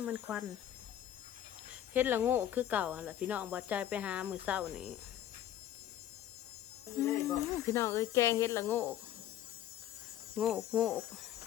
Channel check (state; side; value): quieter; right; 11.7 dB